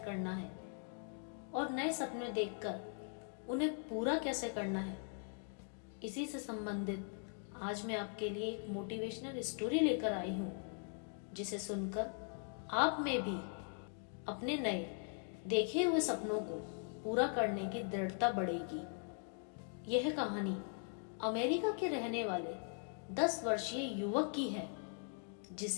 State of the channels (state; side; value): silent; right; 51 dB below the other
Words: है और नए सपने देखकर उन्हें पूरा कैसे करना है, इसी से संबंधित आज मैं आपके लिए एक मोटिवेशनल स्टोरी लेकर आई हूँ, जिसे सुनकर आप में भी अपने नए देखे हुए सपनों को पूरा करने की दृढ़ता बढ़ेगी। यह कहानी अमेरिका के रहने वाले 10 वर्षीय युवक की है,